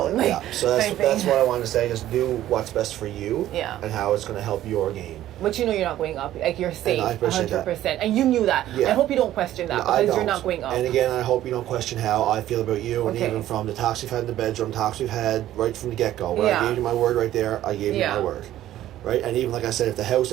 Like, yeah. So that's what I wanted to say. Just do what's best for you. Yeah. And how it's going to help your game. But you know you're not going up. Like, you're safe, And I appreciate 100%. that. And you knew that. Yeah. I hope you don't question that because you're not going up. And again, I hope you don't question how I feel about you, and Okay. even from the talks we've had in the bedroom, talks we've had right from the get-go. Where I gave you my word right there, I gave you my word. Right? And even like I said, if the house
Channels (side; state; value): left; quieter; 13.3 dB